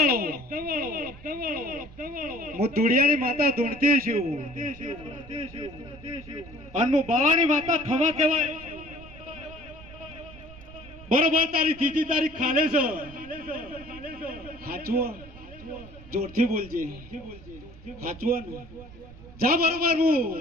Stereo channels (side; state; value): right; noise; rumble, 18 dB below the sound